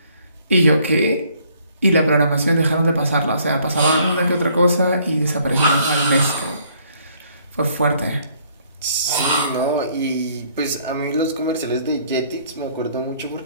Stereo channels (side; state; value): both; inverted; correlation -0.63